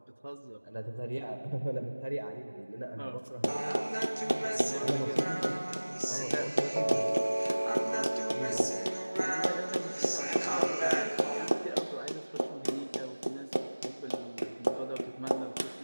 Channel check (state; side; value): inverted; both; correlation -1.00